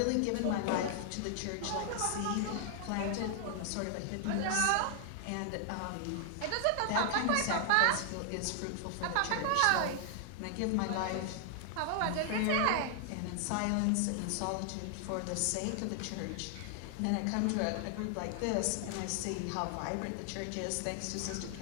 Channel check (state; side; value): different; both; correlation 0.00